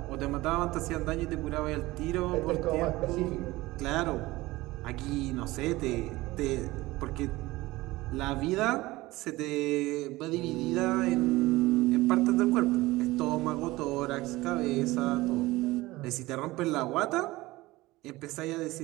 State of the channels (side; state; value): left; quieter; 19.4 dB